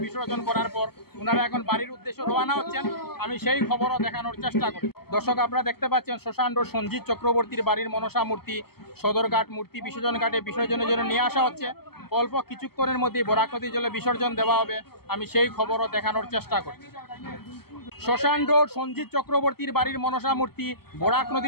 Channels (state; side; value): late; right; 0.96 ms